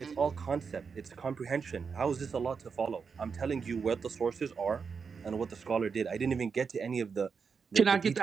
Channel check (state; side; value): quieter; left; 5.7 dB